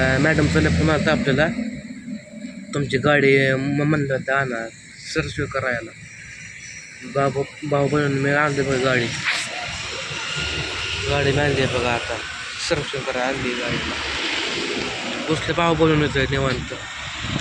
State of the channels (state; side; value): identical; both; correlation 1.00